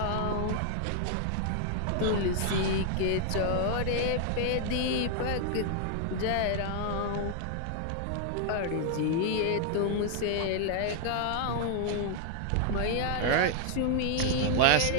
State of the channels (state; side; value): different; both; correlation 0.00